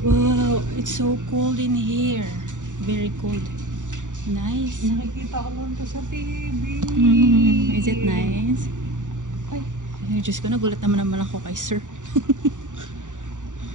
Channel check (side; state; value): left; late; 0.86 ms